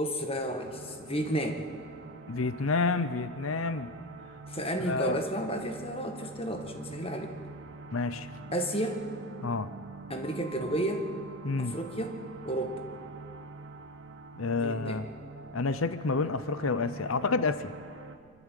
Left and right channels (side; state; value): right; noise; rumble, 28 dB below the sound